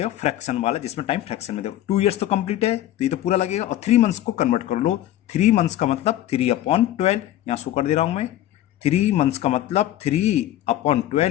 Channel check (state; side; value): quieter; right; 13.2 dB